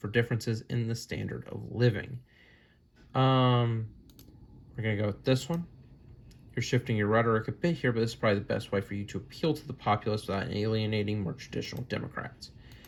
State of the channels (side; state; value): both; identical; correlation 1.00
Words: in the standard of living. We're going to go with this one. You're shifting your rhetoric a bit here, but this is probably the best way for you to appeal to the populace without alienating more traditional Democrats.